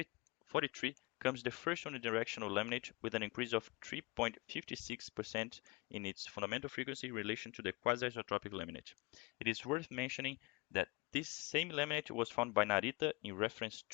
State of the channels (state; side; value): quieter; right; 25.2 dB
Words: comes the first unidirectional laminate with an increase of 3.56% in its fundamental frequency in relation to the quasi-isotropic laminate. It is worth mentioning that this same laminate was found by Narita in reference